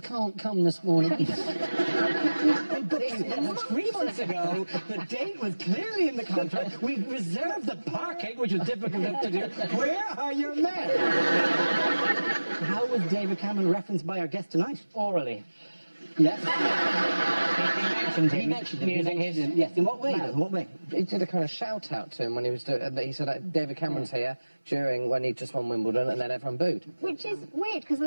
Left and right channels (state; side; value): inverted; both; correlation -1.00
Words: can't come this morning? 3 months ago, the date was clearly in the contract. We reserved the parking, which was difficult enough to do. Where are your men? How was David Cameron referenced by our guest tonight? Orally. Yes. He mentioned him using his... Yes, in what way? In what way? He did a kind of shout out to him when he was doing. He said David Cameron's here when he just won Wimbledon, and then everyone booed. Which is weird, because